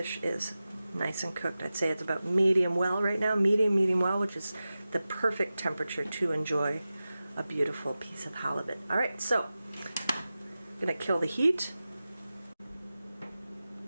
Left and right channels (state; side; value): inverted; both; correlation -0.94